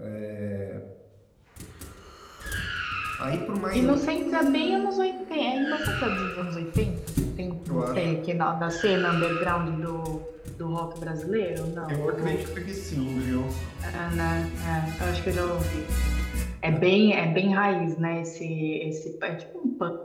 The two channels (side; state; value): both; identical; correlation 1.00